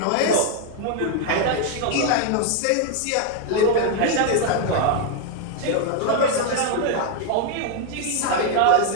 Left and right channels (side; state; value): both; different; correlation 0.01